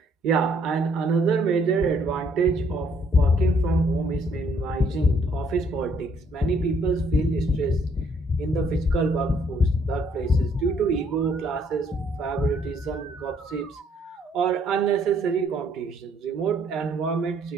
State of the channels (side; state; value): both; normal; correlation 0.66